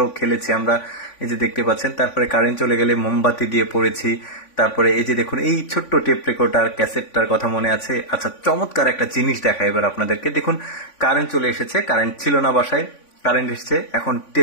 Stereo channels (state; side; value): late; right; 3.5 ms